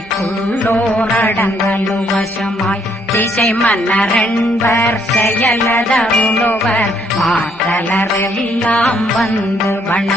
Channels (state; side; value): normal; both; correlation 0.69